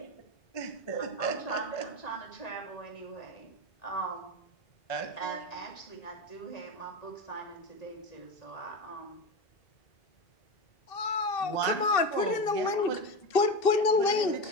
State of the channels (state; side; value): late; right; 2.6 ms